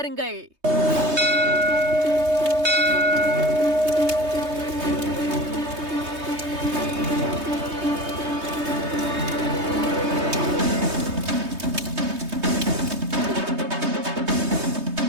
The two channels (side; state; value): left; late; 3.2 ms